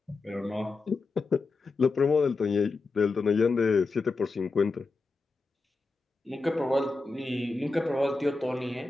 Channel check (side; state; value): right; quieter; 3.7 dB